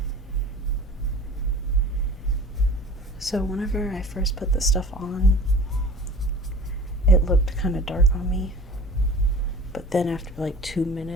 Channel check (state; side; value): normal; both; correlation 0.41